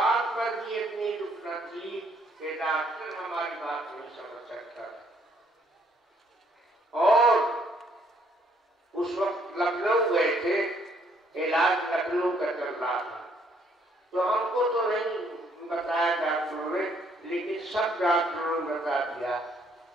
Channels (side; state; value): both; normal; correlation 0.67